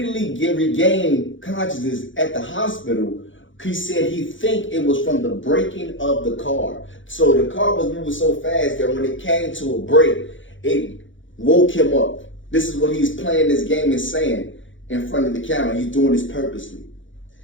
regained consciousness at the hospital, He said he think it was from the braking of the car. So the car was moving so fast that when it came to a brake, it woke him up. This is what he's playing this game and saying in front of the camera. He's doing this purposely.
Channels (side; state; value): right; late; 0.56 ms